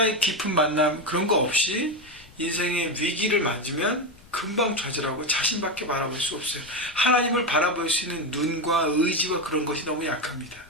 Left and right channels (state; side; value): noise; left; rumble, 26 dB below the sound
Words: 깊은 만남, 그런 거 없이 인생의 위기를 맞으면 금방 좌절하고 자신밖에 바라볼 수 없어요. 하나님을 바라볼 수 있는 눈과 의지와 그런 것이 너무 약합니다.